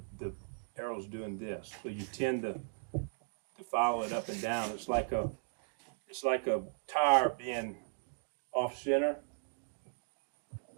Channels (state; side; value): silent; left; digital silence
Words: arrow's doing this. So you tend to follow it up and down. It's like a tire being off center